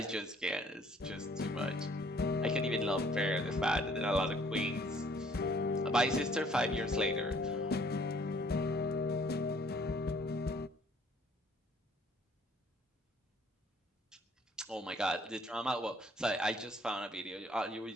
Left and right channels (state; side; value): normal; both; correlation 0.60